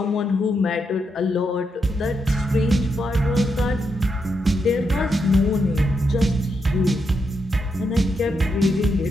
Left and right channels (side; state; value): both; normal; correlation 0.82